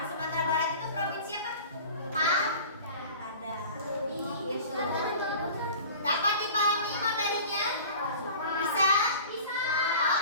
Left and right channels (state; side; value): inverted; both; correlation -0.41